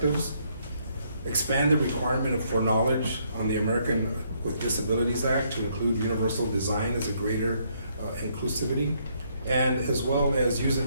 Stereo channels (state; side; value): inverted; both; correlation -0.71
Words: expand the requirement for knowledge on the American with Disabilities Act to include universal design as a greater inclusivity, and as well as use it